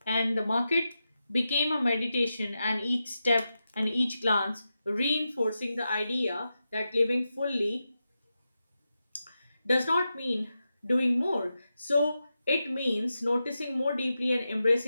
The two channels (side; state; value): both; inverted; correlation -0.89